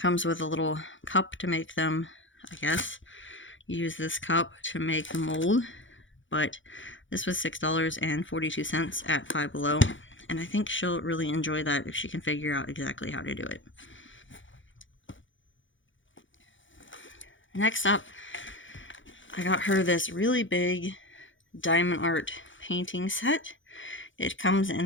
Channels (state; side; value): late; right; 0.56 ms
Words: with a little cup to make them, I guess. You use this cup to make the mold. But this was $6.42 at Five Below, and I think she'll really enjoy that if she can figure out exactly how to do it. Next up, I got her this really big diamond art painting set. It comes